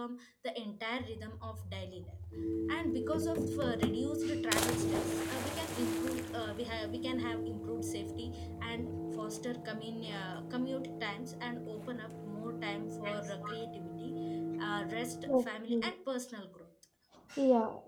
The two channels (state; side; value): identical; both; correlation 1.00